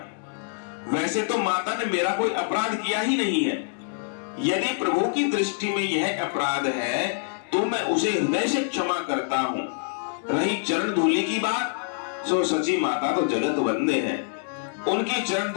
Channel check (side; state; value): right; silent; digital silence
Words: वैसे तो माता ने मेरा कोई अपराध किया ही नहीं है। यदि प्रभु की दृष्टि में यह अपराध है तो मैं उसे हृदय से क्षमा करता हूं। रही चरण धूलि की बात, सो सची माता तो जगत वंदे हैं। उनकी चरण